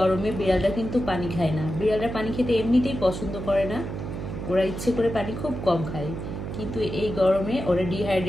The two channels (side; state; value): right; noise; hum, 6 dB below the sound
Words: বিড়ালটা কিন্তু পানি খায় না। বিড়ালরা পানি খেতে এমনিতেই পছন্দ করে না, ওরা ইচ্ছে করে পানি খুব কম খায়। কিন্তু এই গরমে ওরা